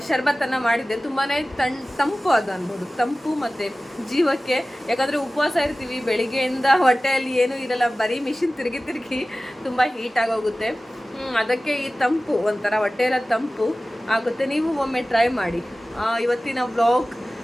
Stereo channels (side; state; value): both; normal; correlation 0.97